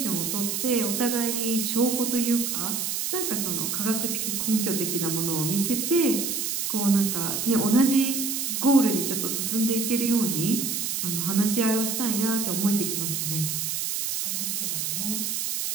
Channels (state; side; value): noise; right; hiss, 1 dB below the sound